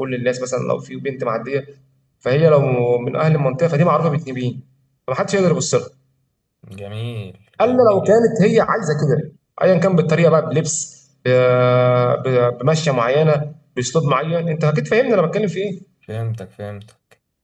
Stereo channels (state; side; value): identical; both; correlation 1.00